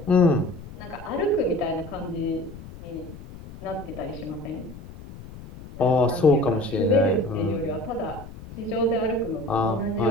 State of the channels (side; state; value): left; noise; rumble, 15 dB below the sound